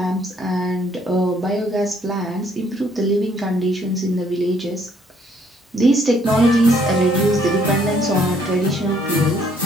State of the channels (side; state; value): both; normal; correlation 0.65